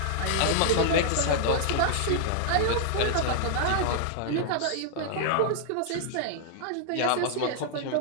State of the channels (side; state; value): both; different; correlation 0.00